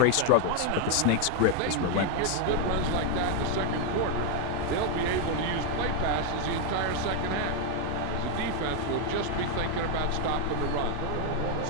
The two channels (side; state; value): both; different; correlation 0.01